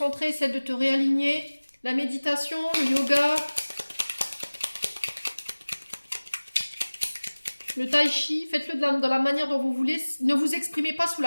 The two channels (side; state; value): both; inverted; correlation -1.00